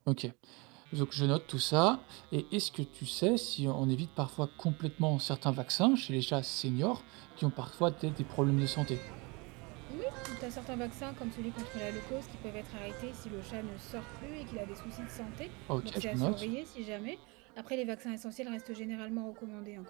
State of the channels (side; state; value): left; quieter; 27.8 dB